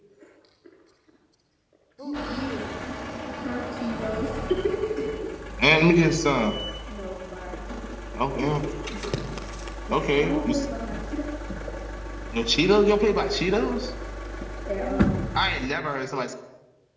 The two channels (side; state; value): both; identical; correlation 1.00